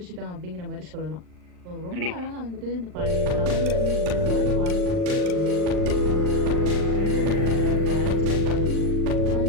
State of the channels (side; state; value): left; late; 39 ms